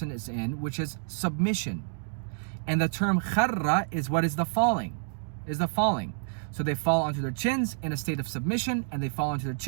is in, which is submission. And the term kharra is what is the falling. So they fall onto their chins in a state of submission, and they fall onto their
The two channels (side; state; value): left; silent; digital silence